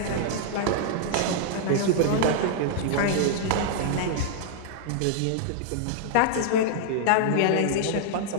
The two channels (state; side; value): different; both; correlation -0.01